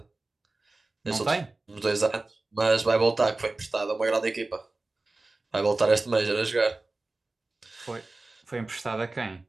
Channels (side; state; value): left; quieter; 3.2 dB